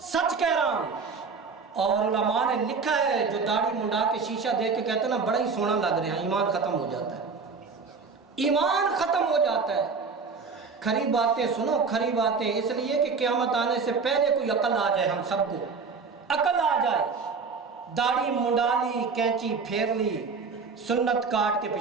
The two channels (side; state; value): left; quieter; 4.9 dB